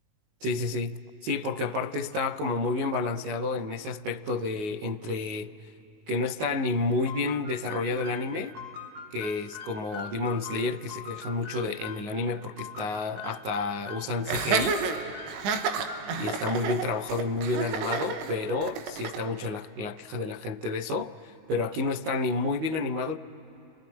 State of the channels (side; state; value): left; late; 20 ms